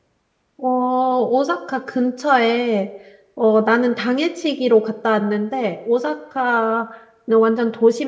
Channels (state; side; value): identical; both; correlation 1.00